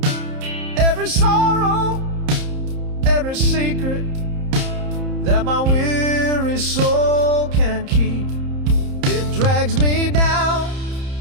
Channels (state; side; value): late; left; 30 ms